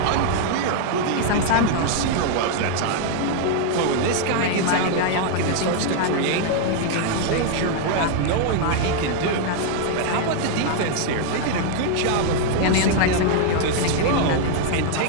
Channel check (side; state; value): both; different; correlation 0.00